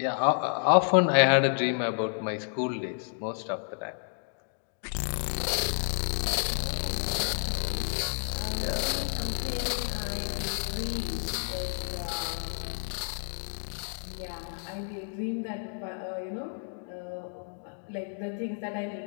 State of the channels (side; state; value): right; silent; 55 dB below the other